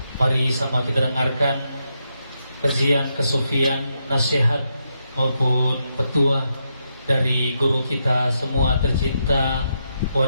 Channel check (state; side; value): inverted; both; correlation -0.82